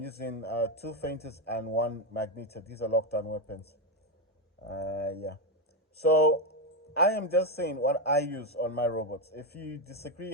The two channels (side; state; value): both; normal; correlation 0.09